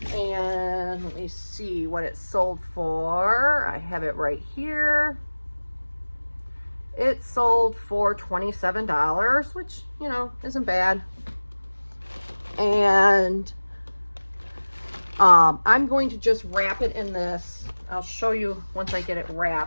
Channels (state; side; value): inverted; both; correlation -1.00